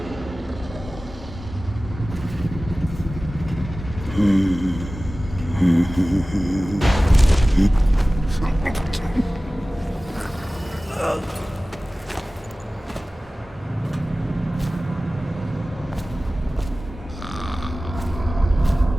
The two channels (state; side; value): normal; both; correlation 0.97